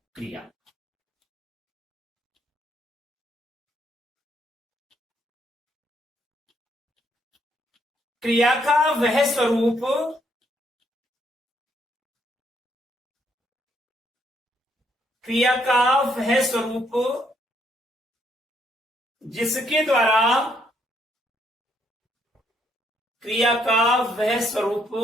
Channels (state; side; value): normal; both; correlation 0.72